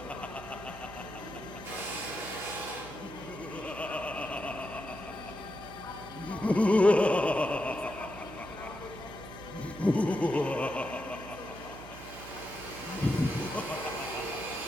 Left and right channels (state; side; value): noise; right; hum, 14 dB below the sound